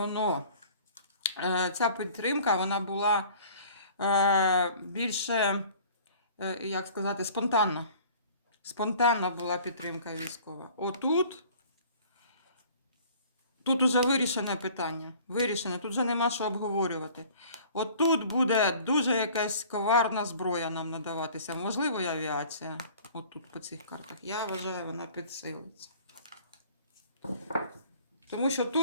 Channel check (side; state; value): both; inverted; correlation -0.49